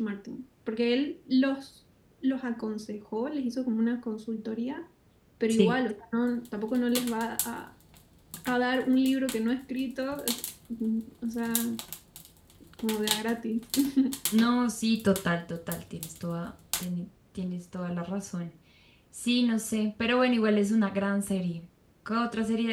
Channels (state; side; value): identical; both; correlation 1.00